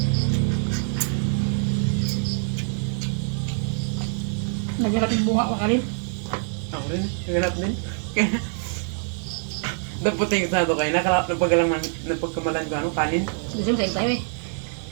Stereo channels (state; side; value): silent; left; 62 dB below the other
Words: Naghanap yung bunga ko kalin. Ako rin. Naganap din. Naputing sa ito kayo. Napagkamalan ko ano, kanin. Gusto mo sa'yo tayo eh.